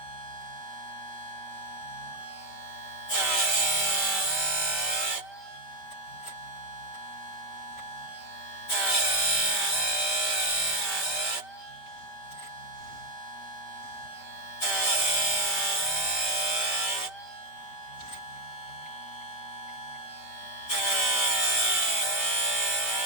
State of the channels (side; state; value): right; late; 5.2 ms